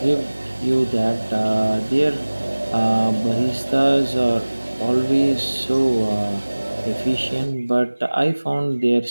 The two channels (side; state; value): both; inverted; correlation -1.00